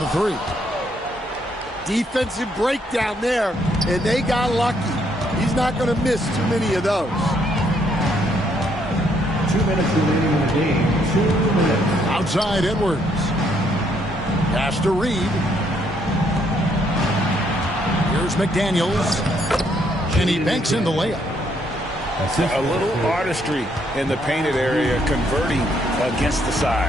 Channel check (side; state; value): both; normal; correlation 0.71